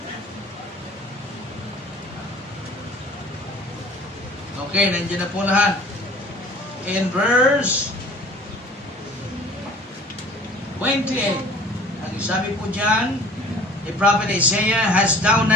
Okay, nandiyan na po lahat. In verse 28, ang sabi po dyan, the prophet Isaiah, "Hast thou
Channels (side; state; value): both; normal; correlation 0.48